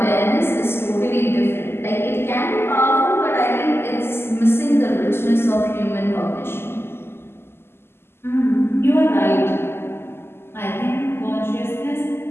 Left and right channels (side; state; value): right; late; 0.12 ms